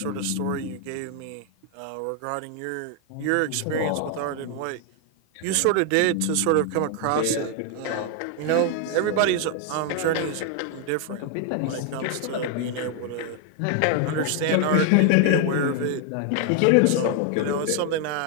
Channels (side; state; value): both; different; correlation 0.00